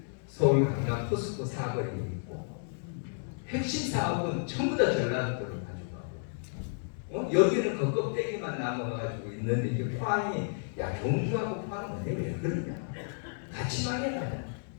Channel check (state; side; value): silent; right; digital silence